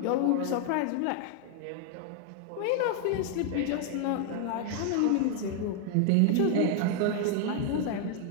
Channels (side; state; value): both; different; correlation 0.00